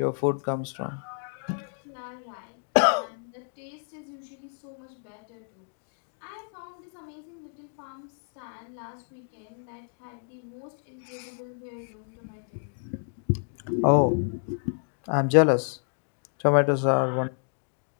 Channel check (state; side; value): silent; right; digital silence